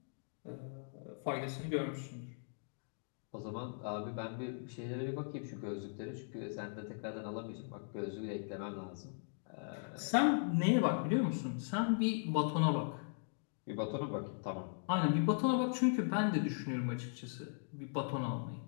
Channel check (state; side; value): silent; right; digital silence